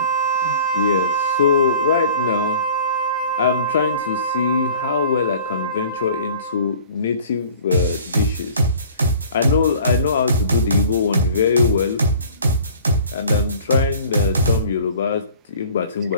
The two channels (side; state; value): both; inverted; correlation -0.48